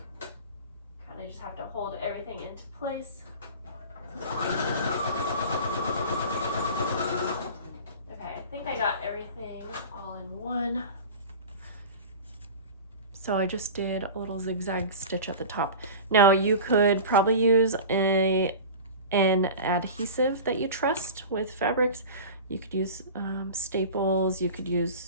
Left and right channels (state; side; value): inverted; both; correlation -0.34